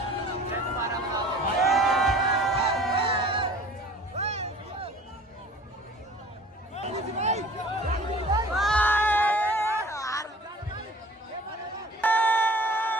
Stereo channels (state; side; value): normal; both; correlation 0.47